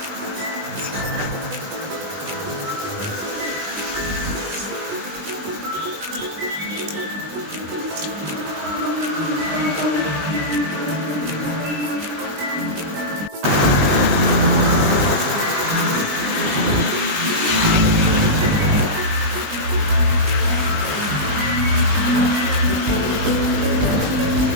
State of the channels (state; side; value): late; left; 20 ms